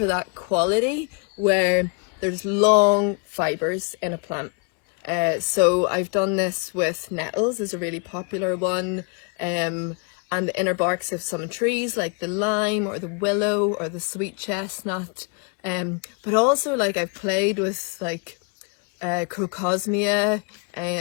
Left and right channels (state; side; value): quieter; right; 33.8 dB